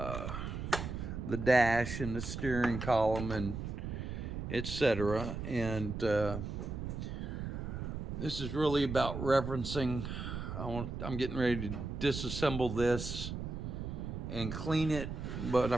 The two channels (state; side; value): noise; right; rumble, 5 dB below the sound